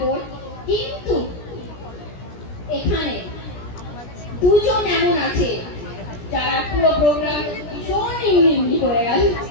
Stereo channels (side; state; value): right; late; 17 ms